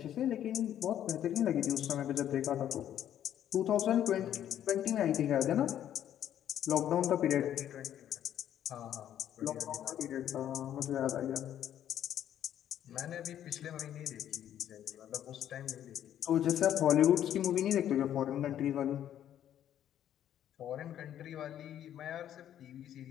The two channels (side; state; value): right; quieter; 10.8 dB